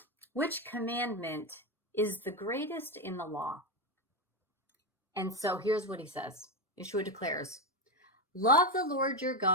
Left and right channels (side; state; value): both; normal; correlation 0.10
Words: "which commandment is the greatest in the law?" And so here's what he says. Yeshua declares, "Love the Lord your